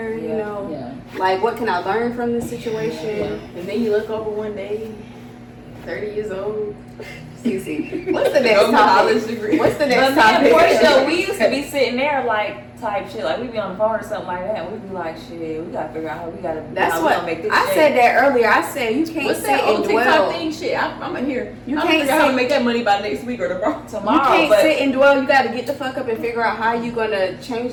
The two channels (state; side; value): identical; both; correlation 1.00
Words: You Yeah. know, Yeah. like what can I learn from this situation? And then you look over one day, 30 years old. Cece, what's the next No college topic? degree. What's the But next me and Portia, topic? we used to be sitting there like type shit, like we'd be on the phone or something like that, and we'd be like, shit, we gotta figure out how we gotta. That's how we what gonna make this I shake. said that earlier. I said you can't What's sit that old and TikTok dwell. thing? Shit, I'm in here. You I'm can't figure out how to sit- make that money by next week or tomorrow. You Tomorrow, can't but sit and dwell. You got to get the fuck up and figure out how you gonna change